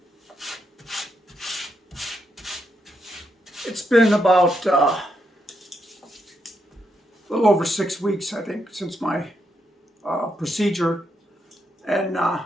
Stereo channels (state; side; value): normal; both; correlation 0.80